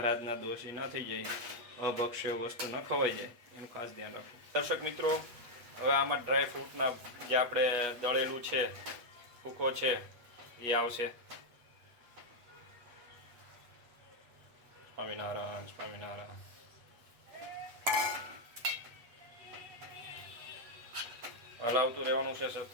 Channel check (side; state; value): left; late; 8.2 ms